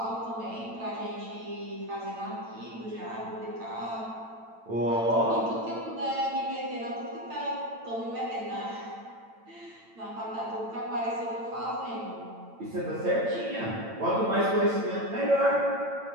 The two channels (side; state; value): left; late; 8.9 ms